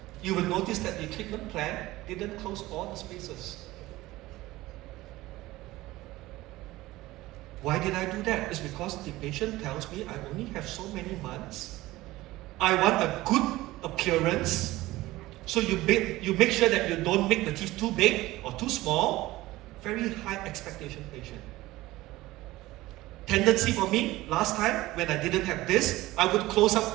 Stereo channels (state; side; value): quieter; left; 18.0 dB